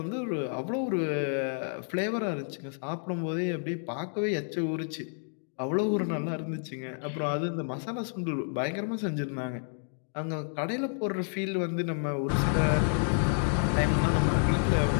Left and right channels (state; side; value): silent; right; 58 dB below the other